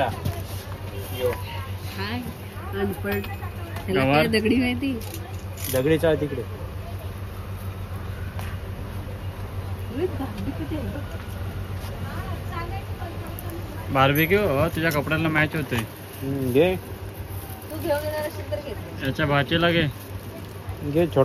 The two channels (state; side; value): identical; both; correlation 1.00